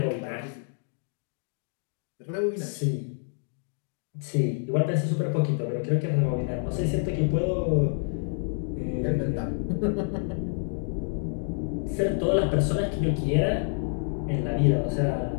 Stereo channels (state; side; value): silent; right; 59 dB below the other